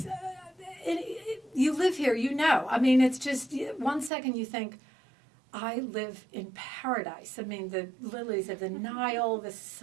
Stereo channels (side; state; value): left; drops out; at 4.1 s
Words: You live here, it's just 1 second you think, I live in paradise. The lilies of the Nile, the